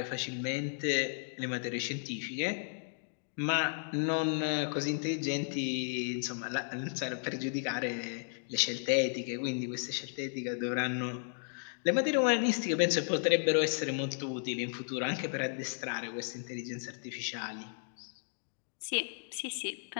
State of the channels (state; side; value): silent; right; digital silence